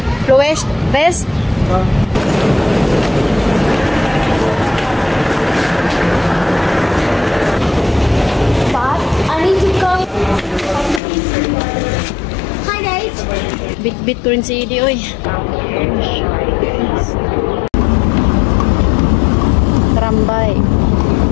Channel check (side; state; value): right; drops out; at 11.0 s